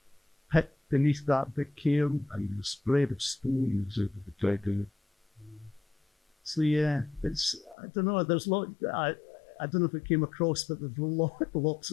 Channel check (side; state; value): right; drops out; at 7.8 s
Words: pit beneath that big cairn and the spread of stones over the dragon. So yeah, it's, I don't know, there's I don't know if it came across, but there's lots